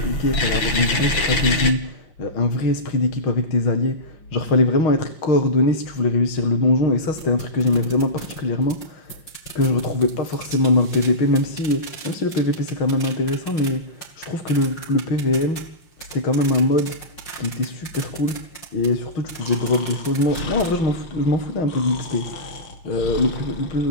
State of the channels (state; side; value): late; right; 5.5 ms